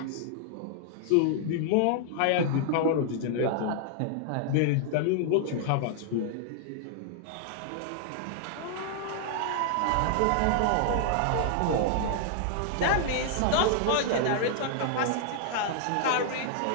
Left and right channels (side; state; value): both; different; correlation -0.01